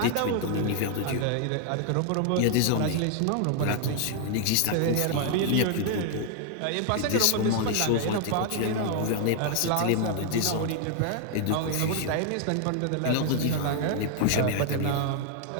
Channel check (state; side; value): different; both; correlation 0.00